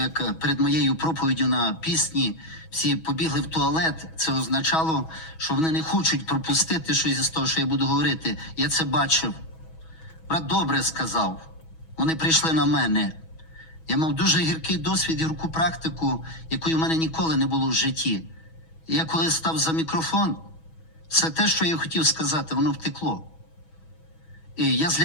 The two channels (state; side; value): late; right; 6.2 ms